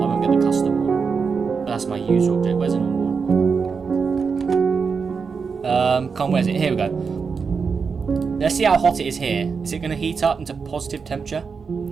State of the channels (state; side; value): quieter; left; 5.5 dB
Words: I won't get the custom one. That's my user object. Where's the normal one? Come on, where's it? Here we go. Let's see how hot it is here. Is it going to heat up into positive temperature?